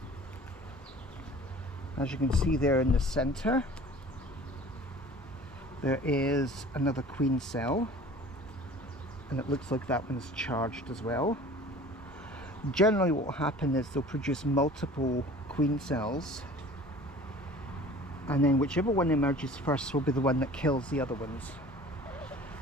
as you can see there in the center, there is another queen cell, and it looks like that one's charged as well. Generally what will happen is they'll produce multiple queen cells, and then whichever one emerges first will be the one that kills the other ones.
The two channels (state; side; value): normal; both; correlation 0.45